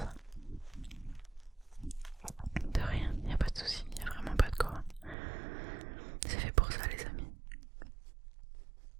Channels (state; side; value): drops out; left; at 5.2 s